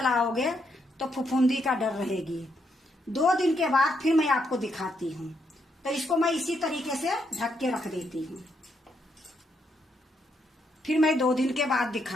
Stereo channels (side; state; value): both; normal; correlation 0.78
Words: तो फफूंदी का डर रहेगी। 2 दिन के बाद फिर मैं आपको दिखाती हूँ। तो इसको मैं इसी तरीके से ढक के रख देती हूँ। फिर मैं 2 दिन के बाद